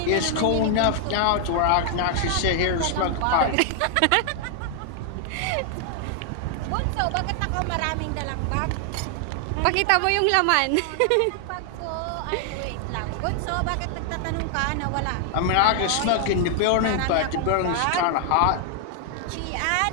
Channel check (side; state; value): both; different; correlation 0.00